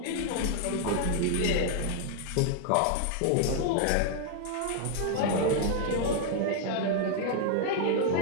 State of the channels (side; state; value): both; different; correlation 0.00